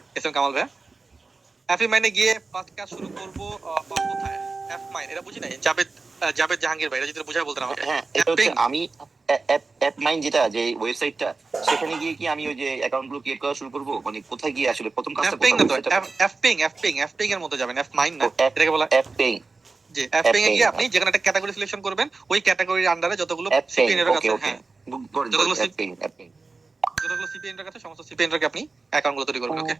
এস এম কামাল ভাই, অ্যাপি মাইনে গিয়ে ফার্স্ট কাজ শুরু করব কোথায়? অ্যাপ মাইন, এটা বুঝি নাই। জাভেদ জাহাঙ্গীর ভাই, এটা যদি বুঝা বলতেন আমাকে। হ্যাঁ, এটা হচ্ছে আমি অ্যাপ মাইন যেটা যে ওয়েবসাইটটা, সেখানে গিয়ে কি আমি ওই যে অ্যাকাউন্ট গুলো ক্রিয়েট করা শুরু করব? মানে কোথায় গিয়ে আসলে প্রথম কাজটা অ্যাপিং না তো, করতে হবে? অ্যাপিং এর মধ্যে যাবেন, অ্যাপ মাইন না, এটাকে বলা অ্যাপিং। জি, অ্যাপিং এ গিয়ে আপনি যেখানে একটা ক্যাটাগরি সিলেকশন করবেন, ওই ক্যাটাগরির আন্ডারে যতগুলো সিপিএন এর কাছে, হ্যাঁ যতগুলো সিপিএন এর কাছে, সমস্ত সিপিএন এর আপনি অ্যাকাউন্ট গুলো তৈরি করবেন। ওকে,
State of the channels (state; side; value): quieter; left; 4.0 dB